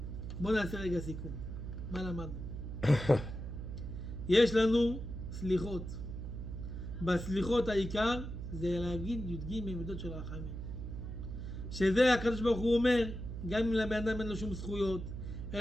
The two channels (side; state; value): right; noise; hum, 7 dB below the sound